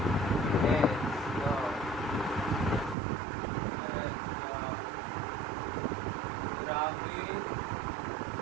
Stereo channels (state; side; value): drops out; left; at 3.0 s